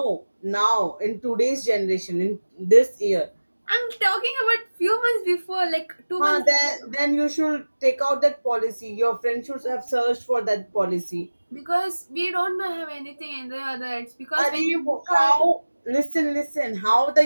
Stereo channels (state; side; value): inverted; both; correlation -1.00